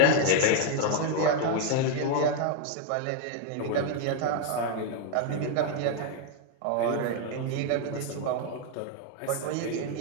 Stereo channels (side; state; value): both; different; correlation 0.01